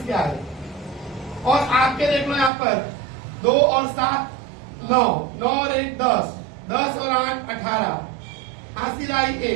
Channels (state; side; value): drops out; left; at 2.5 s